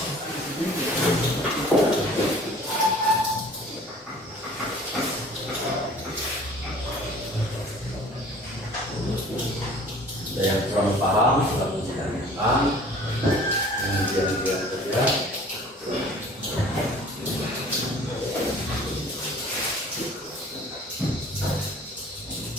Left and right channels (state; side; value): normal; both; correlation 0.48